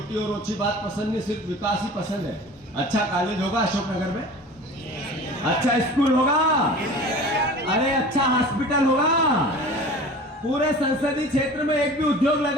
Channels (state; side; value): normal; both; correlation 0.40